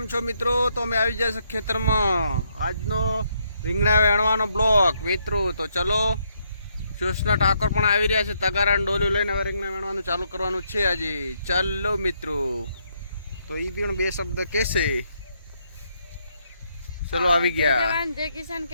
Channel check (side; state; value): both; inverted; correlation -0.75